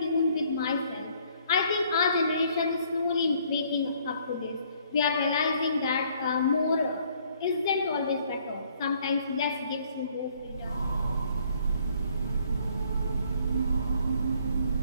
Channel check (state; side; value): inverted; both; correlation -0.63